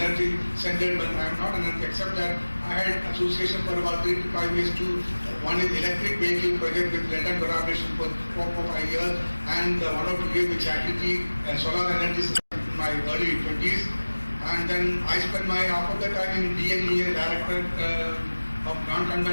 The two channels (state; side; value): inverted; both; correlation -1.00